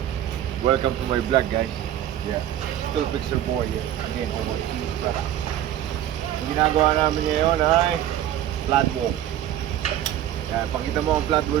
welcome to my vlog guys. Yeah, Steelfixerboy again over here. Ang ginagawa namin ngayon ay Floodwall. Yan, pakita mo ang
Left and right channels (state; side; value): quieter; left; 11.8 dB